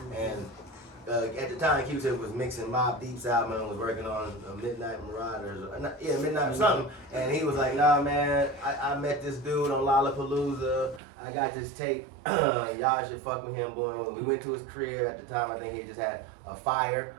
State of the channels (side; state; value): left; drops out; at 11.0 s